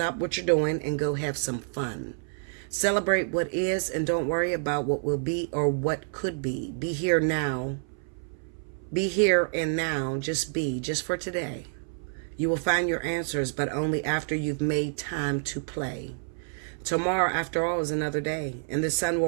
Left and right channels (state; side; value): silent; left; 59 dB below the other